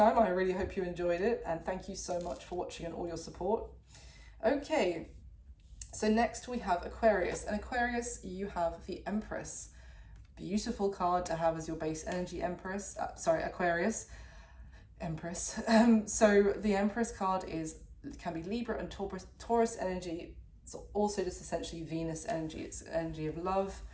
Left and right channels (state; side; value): identical; both; correlation 1.00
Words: I really hope you enjoyed it, and thank you so much for watching and all your support. Okay, so next we have Aquarius, and Aquarius, you have the Empress. Beautiful card to have as your base energy, Aquarius. Empress. So the Empress card can be Libra and Taurus energy. It's also just essentially Venus energy. It's energy of love,